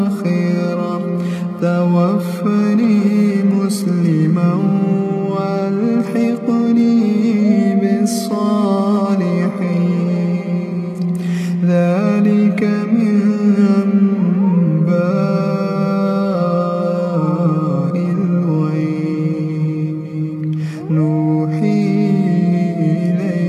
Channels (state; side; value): identical; both; correlation 1.00